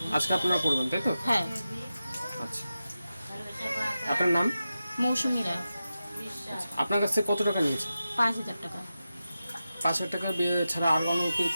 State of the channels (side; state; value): both; inverted; correlation -0.92